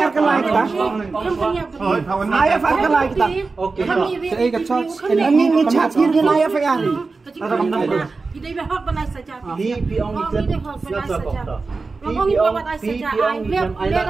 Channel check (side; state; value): left; quieter; 4.0 dB